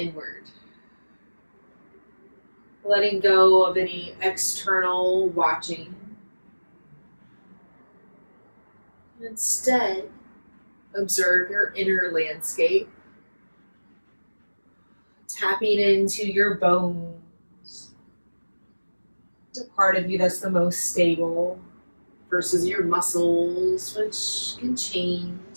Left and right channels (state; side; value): inverted; both; correlation -1.00